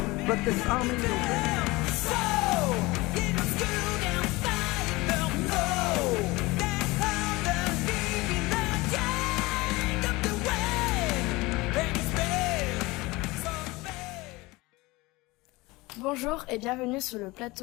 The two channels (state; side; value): quieter; right; 22.1 dB